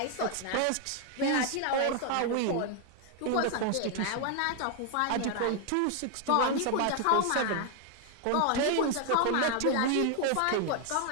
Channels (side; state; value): both; different; correlation 0.01